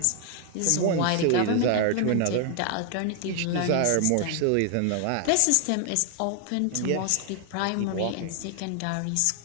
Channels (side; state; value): both; different; correlation 0.00